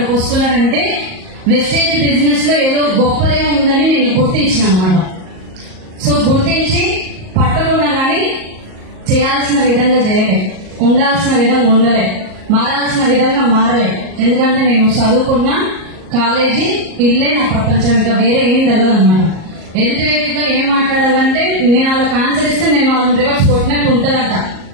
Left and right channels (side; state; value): left; late; 38 ms